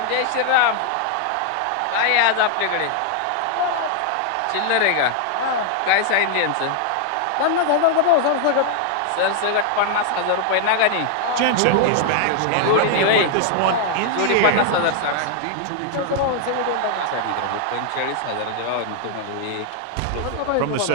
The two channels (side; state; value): both; different; correlation 0.00